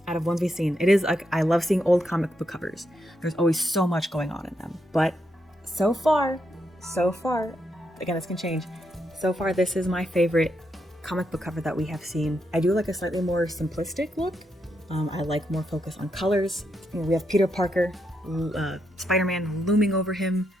out of ones we've seen, it is like, I love seeing old comic book covers. There's always so much going on in them. But so far, again, this can change. So far, this is my favorite comic book cover that we have seen. I do like a slightly more simplistic look. I like more focus on colors. We have Peter Parker, Spider-Man looming over him,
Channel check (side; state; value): both; normal; correlation 0.81